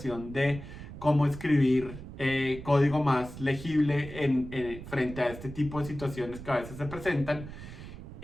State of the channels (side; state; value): right; noise; rumble, 12 dB below the sound